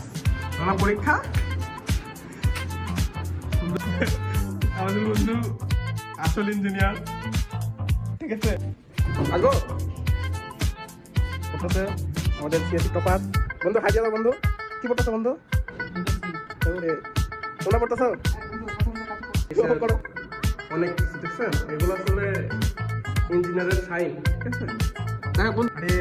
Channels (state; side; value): identical; both; correlation 1.00